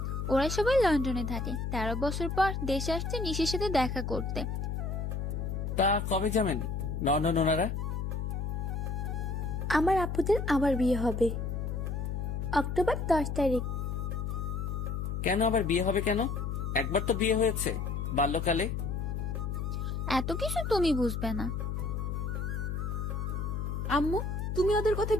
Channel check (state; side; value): noise; left; hum, 2 dB below the sound